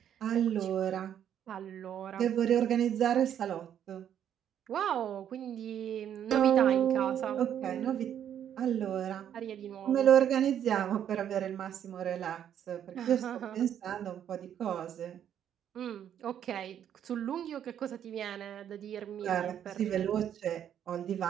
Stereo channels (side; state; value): left; quieter; 9.7 dB